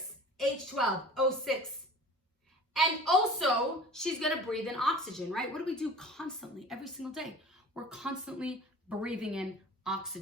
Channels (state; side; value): normal; both; correlation 0.42